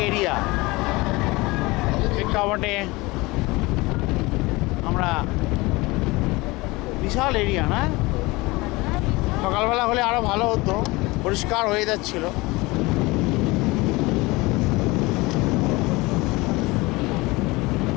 এরিয়া। প্রেক্ষাপটে আমরা বিশাল এরিয়া না, সকালবেলা হলে আরও ভালো হতো, পরিষ্কার হয়ে যাচ্ছিল।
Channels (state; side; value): quieter; right; 22.7 dB